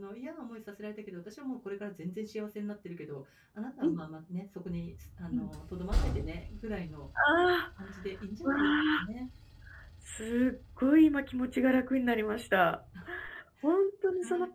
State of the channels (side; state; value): both; identical; correlation 1.00